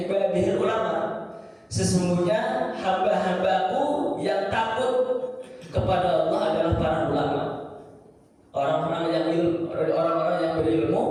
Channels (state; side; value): identical; both; correlation 1.00